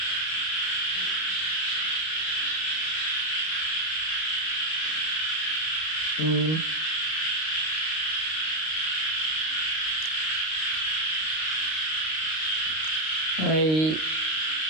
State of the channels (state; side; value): late; right; 32 ms